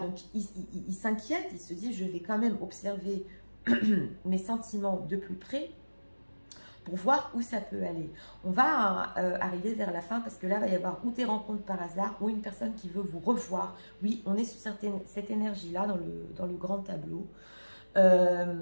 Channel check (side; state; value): both; inverted; correlation -1.00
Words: il s'inquiète, il se dit, je vais quand même observer mes sentiments de plus près, pour voir où ça peut aller. On va arriver vers la fin parce que là, il va y avoir ou des rencontres par hasard ou une personne qui veut vous revoir. Oui, on est sur cette énergie-là dans le grand tableau.